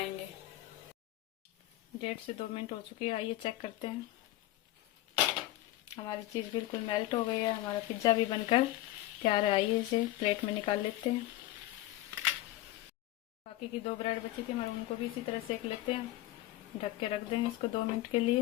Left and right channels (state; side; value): quieter; right; 16.0 dB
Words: 1.5 से 2 मिनट हो चुकी है। आइए चेक करते हैं। हमारी चीज बिल्कुल मेल्ट हो गई है। हमारा पिज्जा भी बनकर तैयार है। आइए इसे प्लेट में निकाल लेते हैं। बाकी की 2 ब्रेड बची थी हमारे, उनको भी इसी तरह सेक लेते हैं। ढक के रख देंगे इसको 2 मिनट के लिए।